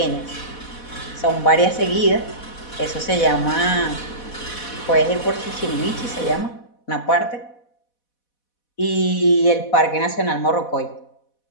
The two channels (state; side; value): late; right; 4.1 ms